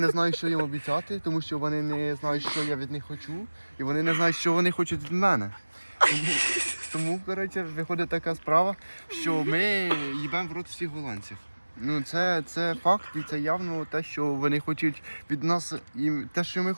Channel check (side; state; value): both; inverted; correlation -1.00